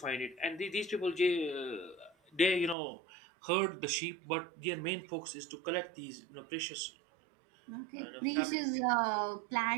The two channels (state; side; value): drops out; left; at 2.8 s